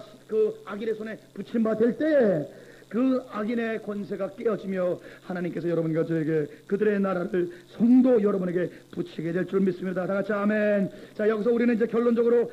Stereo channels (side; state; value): both; identical; correlation 1.00